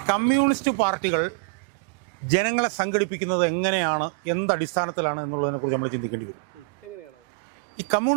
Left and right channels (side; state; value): left; quieter; 36.5 dB